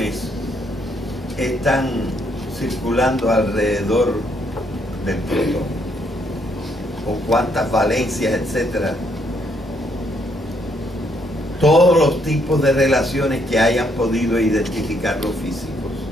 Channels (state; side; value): normal; both; correlation 0.72